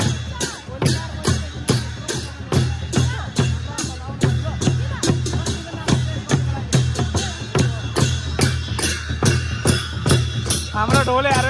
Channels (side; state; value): both; identical; correlation 1.00